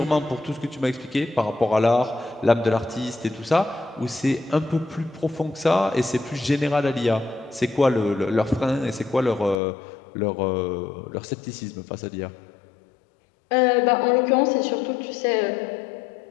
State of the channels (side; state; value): right; drops out; at 9.6 s